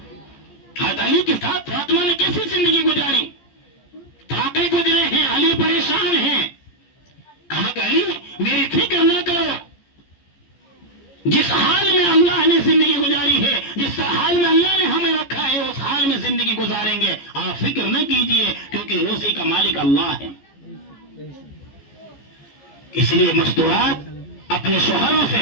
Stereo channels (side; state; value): right; late; 14 ms